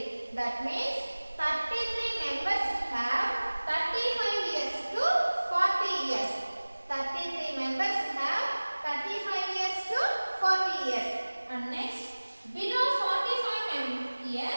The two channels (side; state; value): both; inverted; correlation -1.00